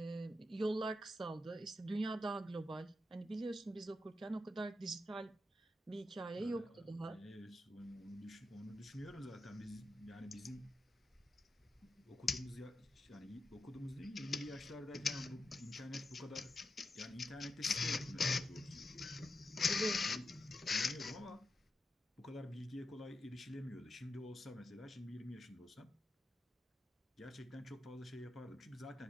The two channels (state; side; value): normal; both; correlation 0.86